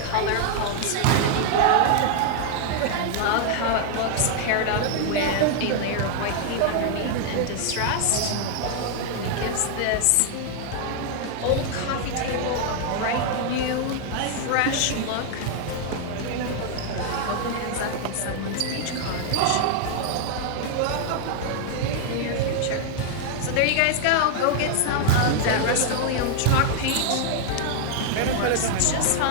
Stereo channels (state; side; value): different; both; correlation 0.00